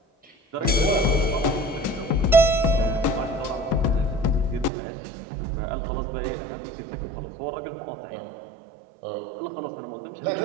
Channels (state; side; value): drops out; left; at 4.7 s